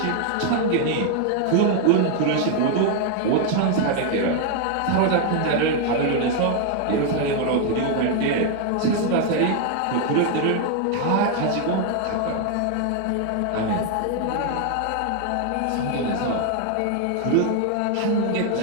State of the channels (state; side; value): different; both; correlation 0.00